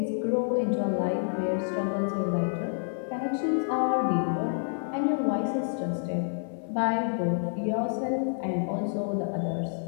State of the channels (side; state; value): right; silent; 58 dB below the other